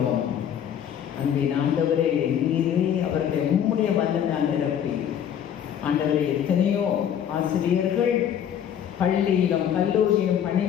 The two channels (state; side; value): quieter; right; 9.3 dB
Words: அன்பின் ஆண்டவரே, நீரே அவர்களை உம்முடைய வல்லமையால் நிரப்பி ஆண்டவரே, எத்தனையோ ஆசிரியர்கள் பள்ளியிலும் கல்லூரியிலும்